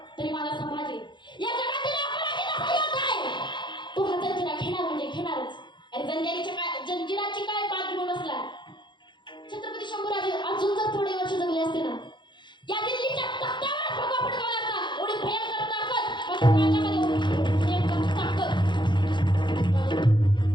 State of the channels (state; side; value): late; right; 0.22 ms